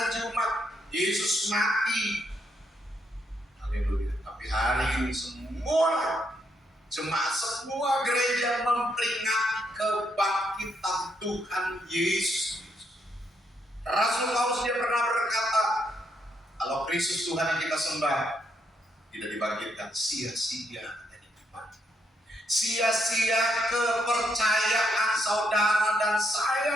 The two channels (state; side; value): normal; both; correlation 0.77